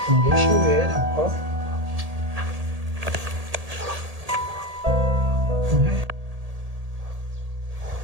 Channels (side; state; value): left; late; 1.8 ms